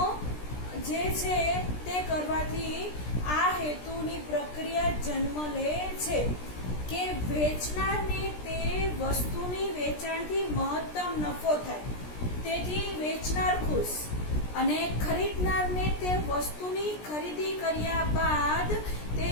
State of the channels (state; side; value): late; right; 17 ms